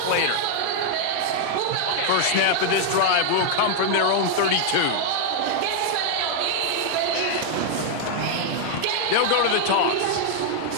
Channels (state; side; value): different; both; correlation 0.00